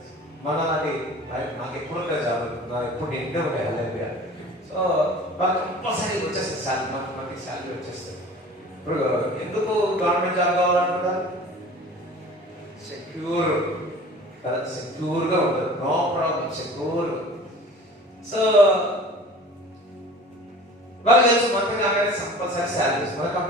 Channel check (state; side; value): normal; both; correlation 0.43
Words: మన నాకు ఎప్పుడు ఉంటాయి జాబ్, నాకు ఎప్పుడు నిండే ఉంటాయి. హల్లెలూయా. సో వాళ్ళకి కంపల్సరీ వచ్చేస్తుంది శాలరీ, మనకి శాలరీ వచ్చేస్తుంది. ఇప్పుడు ఎందుకు గవర్నమెంట్ జాబ్ కావాలనుకుంటారు? సెక్యూర్ కదా, సెక్యూర్గా ఉంటుంది, నో ప్రాబ్లం, సెక్యూర్. సో వాళ్ళు తెలుసు మనకి కాగానే కంపల్సరీ శాలరీస్, మన